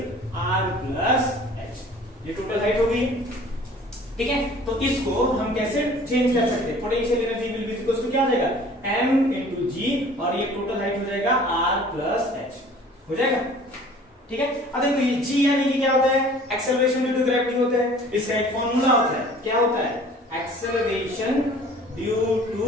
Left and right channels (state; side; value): normal; both; correlation 0.49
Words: r plus h। ये टोटल हाइट हो गई। ठीक है, तो इसको हम कैसे चेंज कर सकते हैं, potential energy will be equal to क्या हो जाएगा m into g और ये टोटल हाइट हो जाएगा r प्लस h हो जाएगा। ठीक है, अब देखो ये g यानी कि क्या होता है एक्सेलरेशन ड्यू टू ग्रेविटी होता है। इसका एक फॉर्मूला होता है, क्या होता है एक्सेलरेशन ड्यू टू